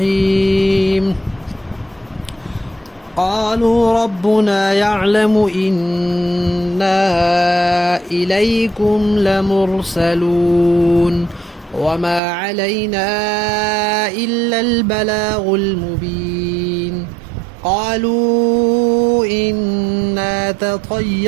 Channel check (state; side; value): drops out; left; at 12.2 s